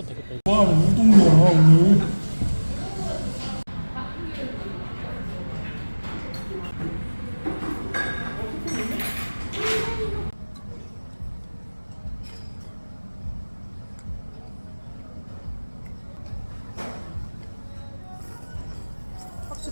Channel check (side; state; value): both; inverted; correlation -1.00